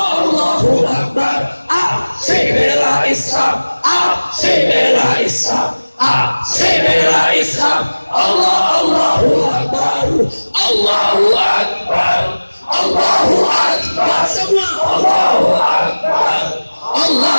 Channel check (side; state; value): both; inverted; correlation -1.00